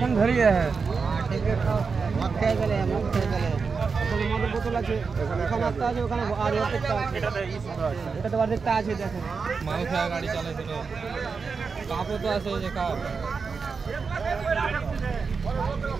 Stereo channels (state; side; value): quieter; left; 5.1 dB